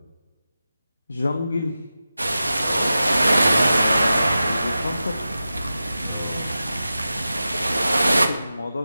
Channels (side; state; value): both; inverted; correlation -0.93